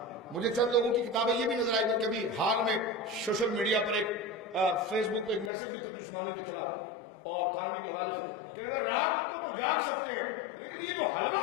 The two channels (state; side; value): drops out; right; at 5.5 s